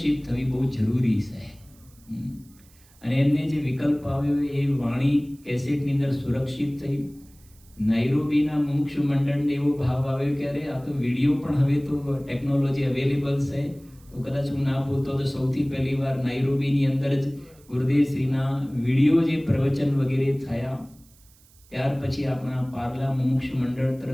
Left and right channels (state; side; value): noise; right; hiss, 28 dB below the sound